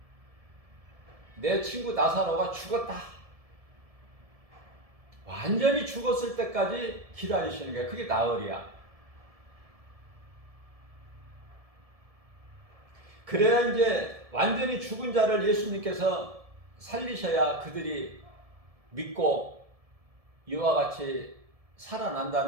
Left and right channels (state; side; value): late; left; 1.7 ms